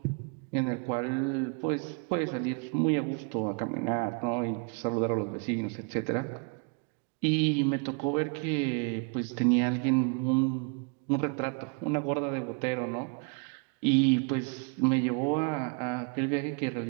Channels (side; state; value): left; quieter; 36.3 dB